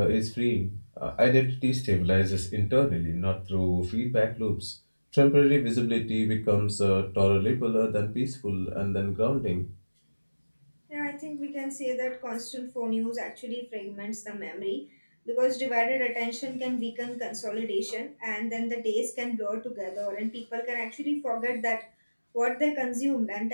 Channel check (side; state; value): both; inverted; correlation -1.00